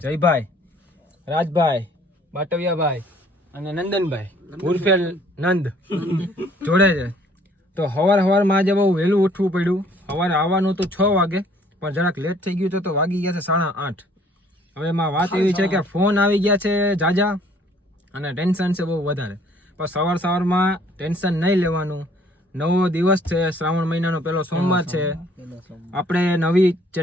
જયભાઈ, રાજભાઈ, બાટવિયાભાઈ અને નંદનભાઈ ઉર્ફે નંદ જોડે છે। તો સવારમાં આજે બહુ વહેલું ઉઠવું પડ્યું। સવારે આવવાનું તો 6 વાગે, પણ જરાક લેટ થઈ ગયું તો વાગી ગયા છે 8:30। હવે એમાં વાત એવી છે કે ફોન આવી ગયા છે જાજા અને ટેન્શન છે બહુ વધારે, પણ સવારમાં ટેન્શન નહીં લેવાનું। નવો દિવસ છે, શ્રાવણ મહિનાનો પહેલો સોમવાર છે। આપણે નવી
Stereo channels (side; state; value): both; normal; correlation 0.59